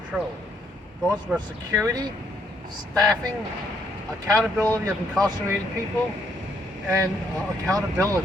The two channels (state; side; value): normal; both; correlation 0.71